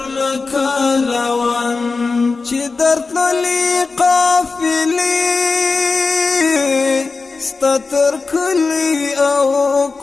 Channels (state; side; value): quieter; right; 4.2 dB